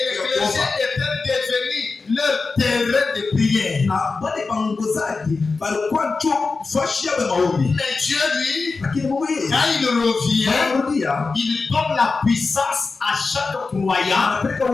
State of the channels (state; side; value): quieter; right; 4.1 dB